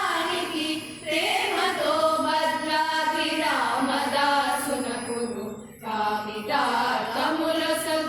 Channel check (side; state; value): both; identical; correlation 1.00